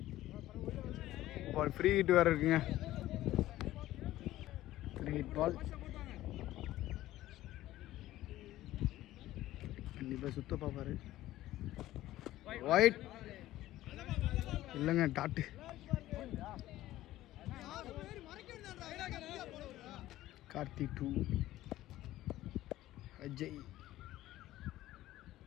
பால் ஃப்ரீ ஹிட் வேறு இருக்குங்க. ஃப்ரீ ஹிட் பால் கண்டிப்பாக சுத்த பார்ப்பாரு. ஒயிட் இல்லைங்க, dot. Karthi 2 Ajay.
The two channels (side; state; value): right; quieter; 15.2 dB